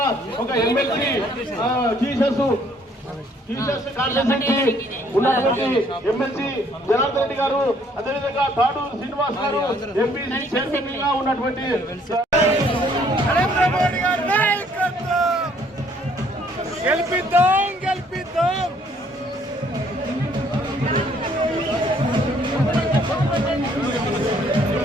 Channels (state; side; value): normal; both; correlation 0.63